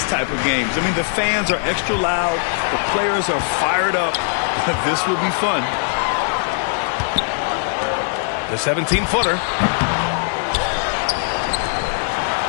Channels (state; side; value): silent; right; 64 dB below the other